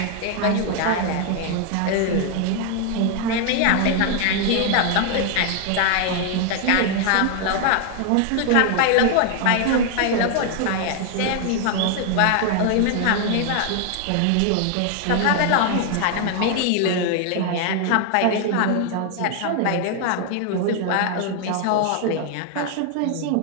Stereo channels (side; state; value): both; different; correlation 0.00